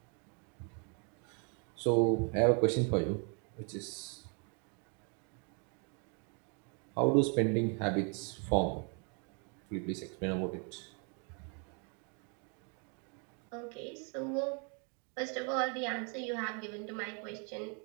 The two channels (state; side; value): quieter; left; 37.7 dB